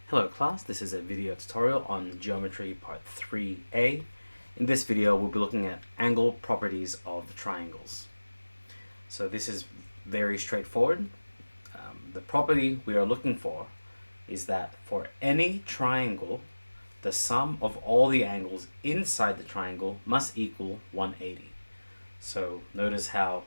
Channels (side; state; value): both; inverted; correlation -1.00